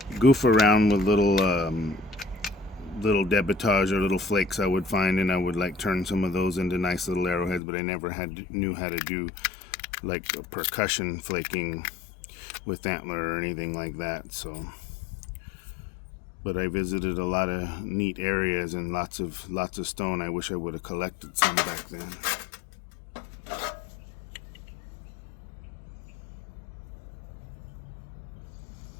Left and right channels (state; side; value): drops out; right; at 7.6 s